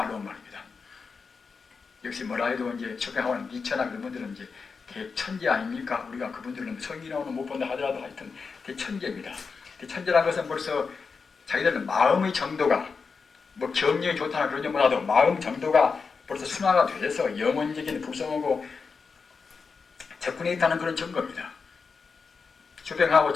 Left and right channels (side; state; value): right; quieter; 5.1 dB